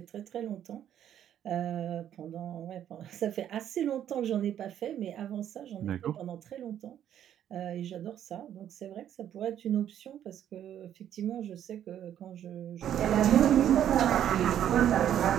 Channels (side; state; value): left; quieter; 10.4 dB